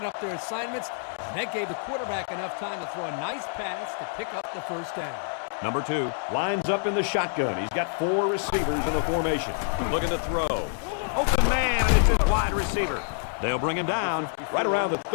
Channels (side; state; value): right; silent; digital silence